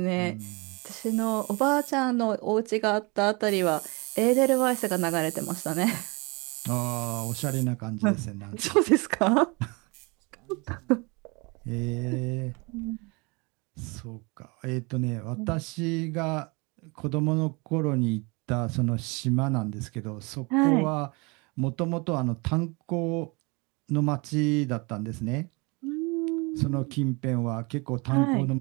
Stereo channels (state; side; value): quieter; left; 28.4 dB